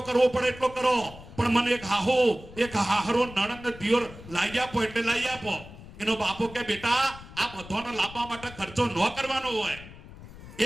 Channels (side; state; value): left; noise; rumble, 17 dB below the sound